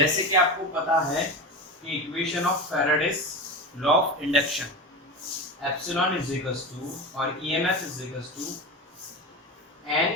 कि आपको पता है कि equation of Faraday's law of induction, epsilon is equals to और EMF is equals to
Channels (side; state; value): both; normal; correlation 0.24